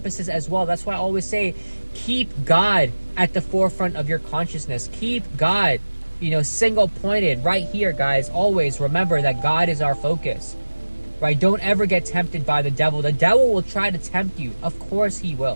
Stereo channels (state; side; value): inverted; both; correlation -1.00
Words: as well. That's why I always say, keep God at the forefront of your consciousness. Keep God, single pointed right here, guys. Always remember that God is our focus. Right? Don't ever get tempted by the devil. The devil will try to tempt you. Of course he